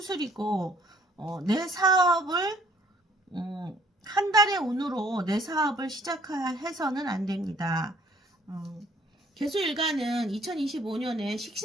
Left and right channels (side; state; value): both; normal; correlation 0.60